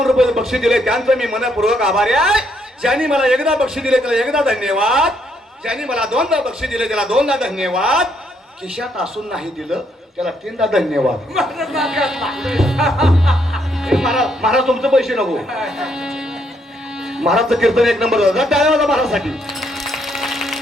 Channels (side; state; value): both; normal; correlation 0.73